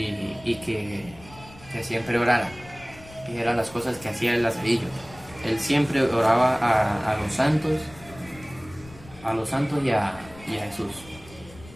que siempre orara. Y eran las cosas que hacía el Lazarillo. Él siempre oraba a los santos y a Jesús.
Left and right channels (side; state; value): left; noise; rumble, 20 dB below the sound